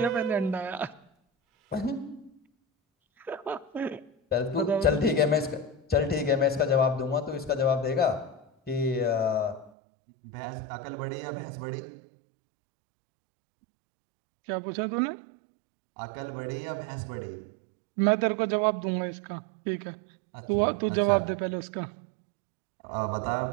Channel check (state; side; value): drops out; left; at 9.7 s